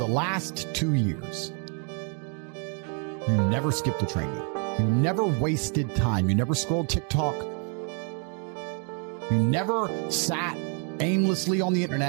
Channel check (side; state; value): left; quieter; 40.0 dB